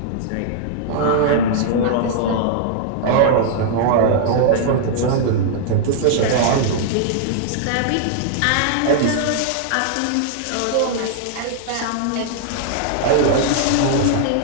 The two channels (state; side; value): different; both; correlation -0.01